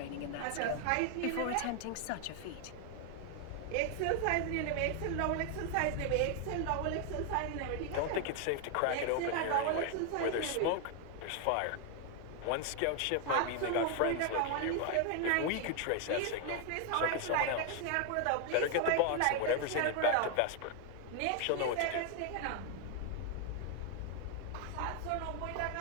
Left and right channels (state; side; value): different; both; correlation 0.00